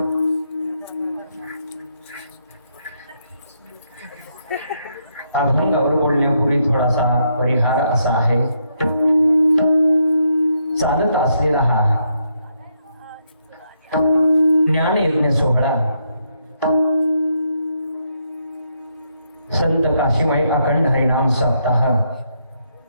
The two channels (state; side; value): inverted; both; correlation -0.77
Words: अभंगावर बोलण्यापूर्वी थोडासा परिहार असा आहे. चालत असलेला हा ज्ञान यज्ञ सोहळा संत काशीमाई अखंड हरिनाम सप्ताह